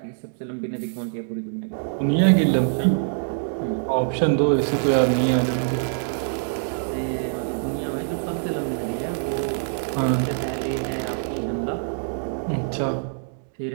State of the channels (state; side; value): silent; left; digital silence